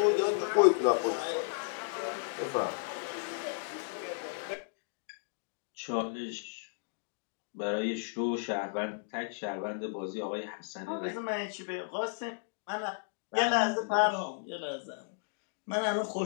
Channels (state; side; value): silent; right; digital silence